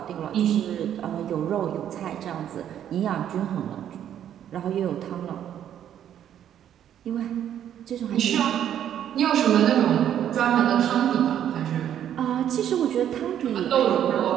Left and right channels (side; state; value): left; quieter; 10.2 dB